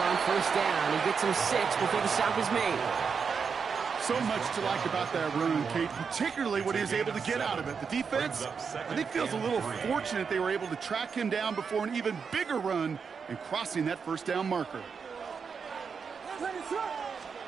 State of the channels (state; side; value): quieter; left; 5.9 dB